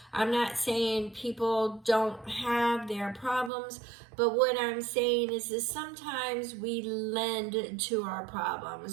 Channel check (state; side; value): drops out; left; at 3.5 s